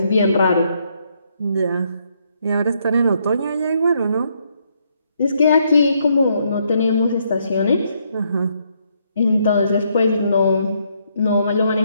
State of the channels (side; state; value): both; inverted; correlation -0.74